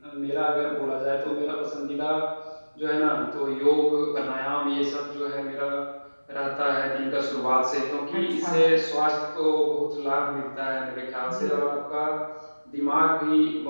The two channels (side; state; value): both; inverted; correlation -1.00